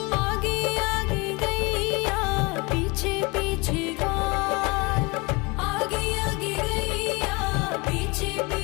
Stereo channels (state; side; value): quieter; right; 26.5 dB